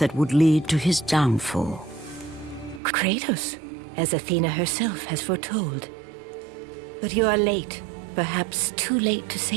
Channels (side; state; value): left; drops out; at 2.8 s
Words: would lead to his downfall. Kratos, as Athena herself has foretold. But you are late, perhaps too late to